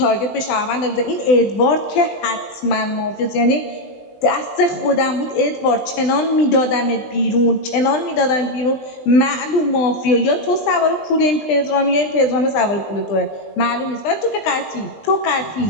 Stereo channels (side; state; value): right; late; 20 ms